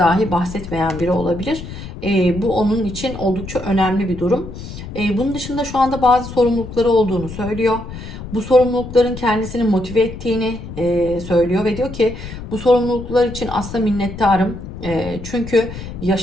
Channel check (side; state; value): left; noise; rumble, 11 dB below the sound